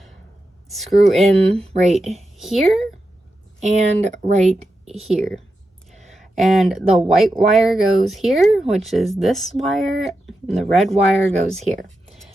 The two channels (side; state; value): both; normal; correlation 0.89